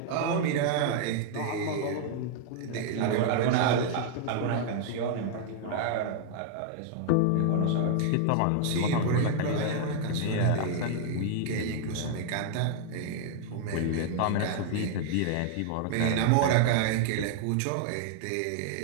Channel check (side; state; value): both; different; correlation 0.00